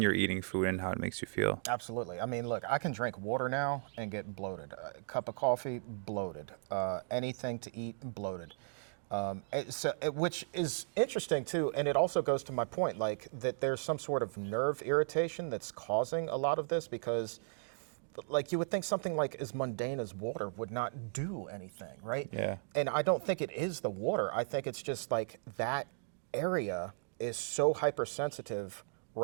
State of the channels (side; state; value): left; silent; digital silence